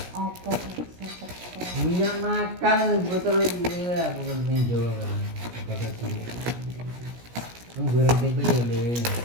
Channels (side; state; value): left; late; 17 ms